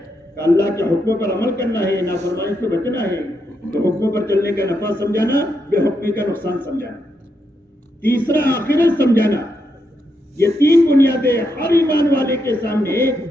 کہ اللہ کے حکموں پر عمل کرنا ہے، نافرمانی سے بچنا ہے. تو حکموں پر چلنے کا نفع سمجھانا، بے حکمی کا نقصان سمجھانا. تیسرا آخرت سمجھانا. یہ 3 بنیادیں ہر ایمان والے کے سامنے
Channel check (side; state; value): both; normal; correlation 0.81